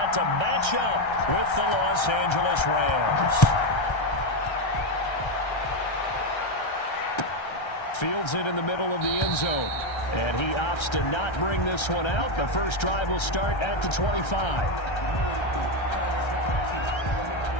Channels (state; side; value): late; right; 1.3 ms